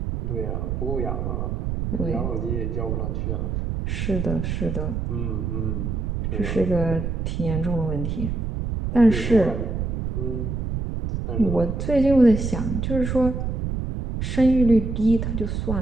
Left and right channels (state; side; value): noise; right; rumble, 2 dB below the sound